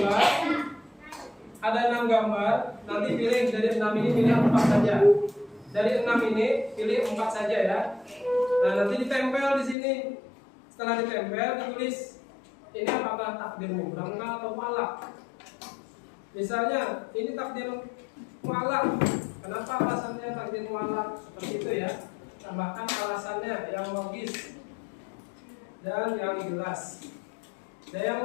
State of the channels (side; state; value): right; drops out; at 9.8 s